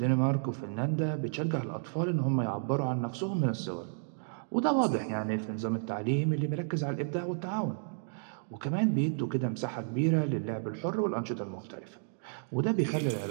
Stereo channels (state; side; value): silent; left; digital silence